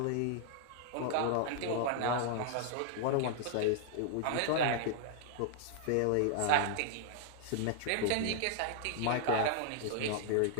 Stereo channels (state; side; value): different; both; correlation -0.01